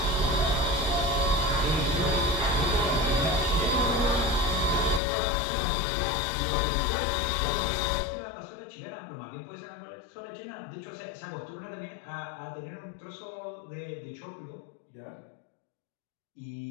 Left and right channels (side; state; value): right; drops out; at 5.0 s